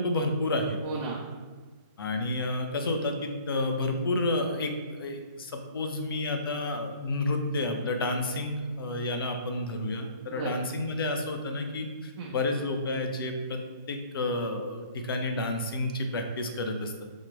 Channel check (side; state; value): both; inverted; correlation -0.51